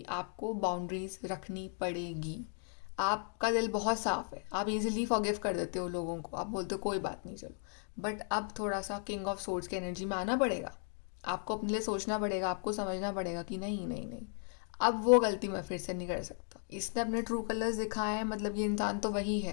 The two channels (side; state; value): right; silent; 54 dB below the other